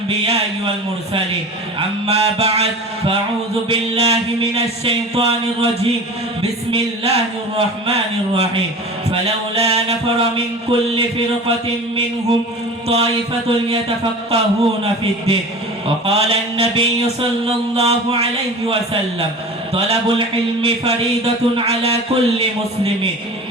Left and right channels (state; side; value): normal; both; correlation 0.37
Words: ওয়াল মুরসালিন। আম্মা বা'দ, ফাআউযু বিল্লাহি মিনাশ শাইতানির রাজীম। বিসমিল্লাহির রাহমানির রাহিম। ফালাউলা নাফারা মিন কুল্লি ফিরকাতিন মিনহুম তাইফাতুন ইয়াতাফাক্কাহুনা ফিদ-দ্বীন। وقال النبي صلى الله عليه وسلم طلب العلم فريضة على كل مسلم